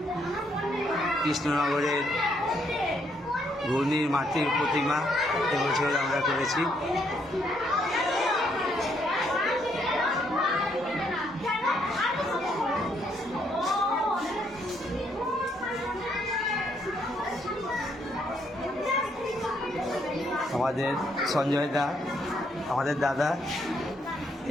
কৃষ্ণনগরের ঘূর্ণির মাতৃর প্রতিমা এবছর আমরা করেছি। আমাদের সঞ্জয় দা, আমাদের দাদা,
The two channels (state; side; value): normal; both; correlation 0.72